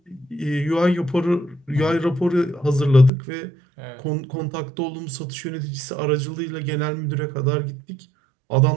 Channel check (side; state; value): left; drops out; at 3.1 s